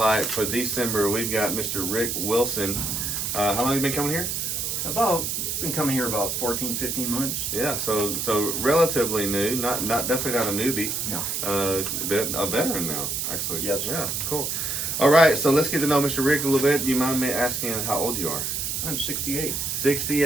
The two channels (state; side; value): noise; right; hiss, 2 dB below the sound